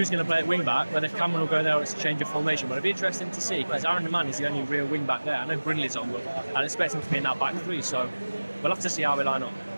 going to play at wing back, whether Cameron will go there or it's a change of formation, but it'll be interesting to see because Aaron Deman is the only real wing back there. I know Brindley's on, but I'd expect him to be in that back 3, so we'll have to see how we line up.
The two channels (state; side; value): inverted; both; correlation -1.00